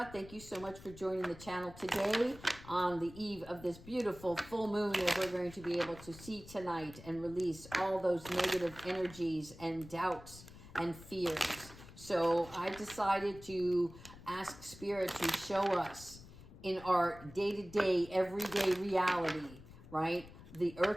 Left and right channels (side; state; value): left; noise; rumble, 17 dB below the sound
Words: Thank you so much for joining the channel today on the eve of this beautiful full moon that we're going to be able to see tonight and release all those negative energies and doubts and fears. So I decided to ask Spirit to show us in our day-to-day, everyday reality, right? The